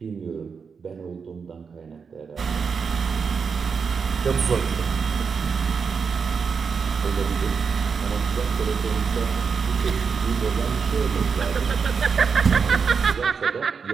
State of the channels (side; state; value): left; quieter; 5.8 dB